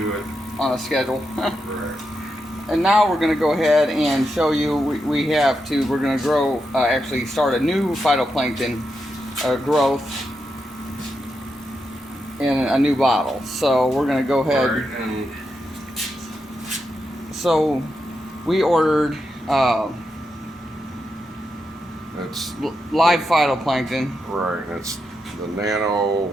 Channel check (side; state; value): both; normal; correlation 0.85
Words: it. on a schedule. Right. And now we're going to go ahead and show you, we're going to grow, actually start a new phytoplankton growth in a new bottle. So we're going to go ahead. Right, and So we ordered it's live phytoplankton. right. It's the nano.